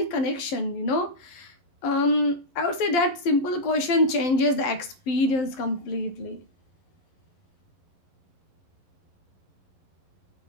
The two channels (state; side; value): late; right; 11 ms